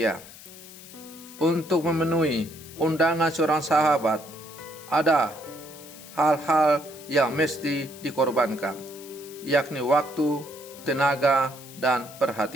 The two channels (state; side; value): noise; left; hiss, 17 dB below the sound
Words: Untuk memenuhi undangan seorang sahabat, ada hal-hal yang mesti dikorbankan, yakni waktu, tenaga, dan